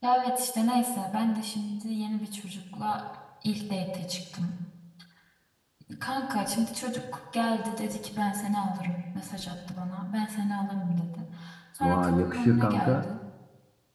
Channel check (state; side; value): identical; both; correlation 1.00